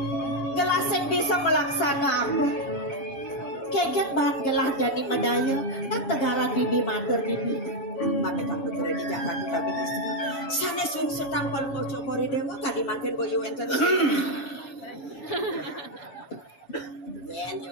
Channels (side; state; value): right; late; 7.2 ms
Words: gelah sen bisa melaksana apa keket bahan gelah jadi medaya dan tegaran bibi matur bibi maka tak betul di Jakarta babi istri sana sungsut tanpa lu cokori dewa kadi makin boyo enten yen